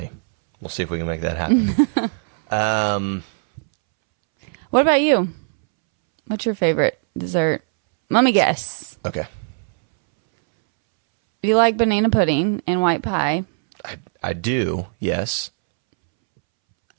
we'll see if we can make that happen. What about you? What's your favorite dessert? Let me guess. Okay. You like banana pudding and white pie. I do, yes.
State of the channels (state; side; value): silent; left; 66 dB below the other